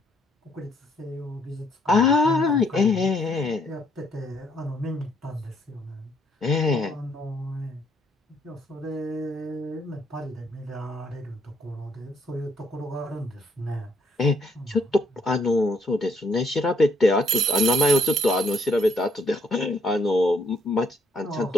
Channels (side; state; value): both; normal; correlation 0.70